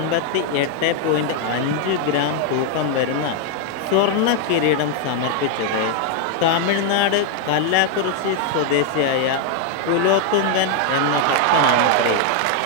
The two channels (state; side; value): different; both; correlation 0.00